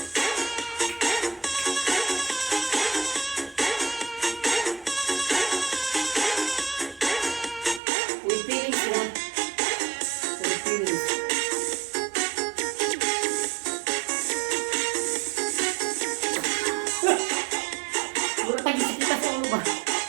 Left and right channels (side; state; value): left; drops out; at 7.8 s